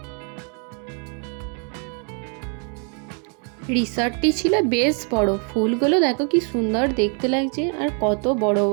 রিসর্টটি ছিল বেশ বড়, ফুলগুলো দেখো কি সুন্দর দেখতে লাগছে আর কত বড়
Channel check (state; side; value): quieter; left; 39.9 dB